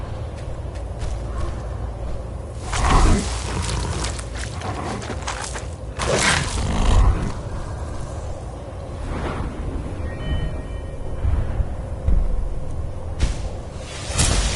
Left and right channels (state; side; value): identical; both; correlation 1.00